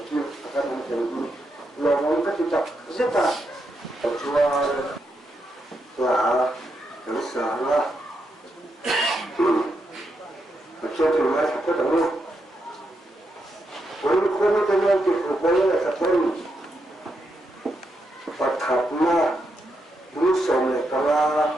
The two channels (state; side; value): normal; both; correlation 0.82